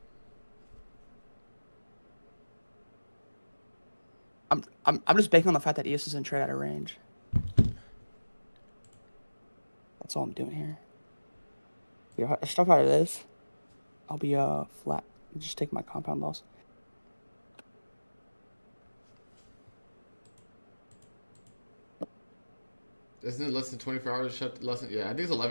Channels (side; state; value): both; inverted; correlation -1.00